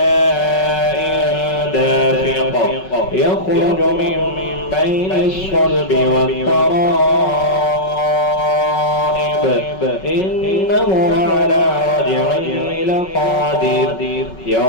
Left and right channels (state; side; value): late; right; 5.4 ms